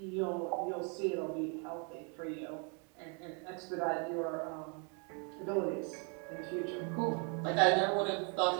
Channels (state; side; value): quieter; left; 37.3 dB